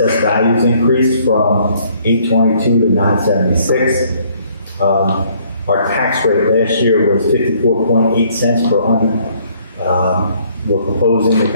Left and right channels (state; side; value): inverted; both; correlation -0.64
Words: values increased from 822 to 976. Our tax rate last year was 54.8 cents per hundred. We're proposing the